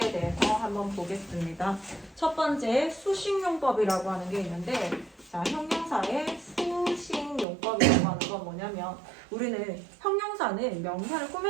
대해서 한번 보겠습니다. 첫 번째 수식용법이라고 하는 게 있는데, 자, 형용사의 수식용법이라고 하는 건 뭐냐면 우리는 형용사는 명사를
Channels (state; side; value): drops out; left; at 7.5 s